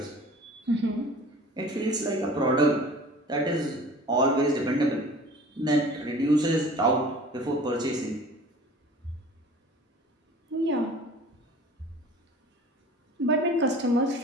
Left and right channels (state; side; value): normal; both; correlation 0.44